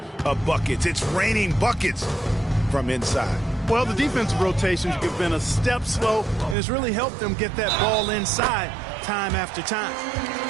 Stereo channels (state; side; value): drops out; left; at 6.6 s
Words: of buckets. It's raining buckets from inside. Well, the defensive rotations have been a step slow, and it's really helped them get that ball inside time after time.